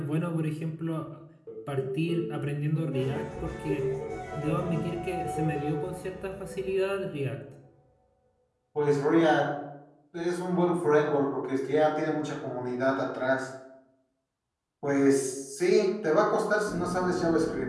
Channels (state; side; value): identical; both; correlation 1.00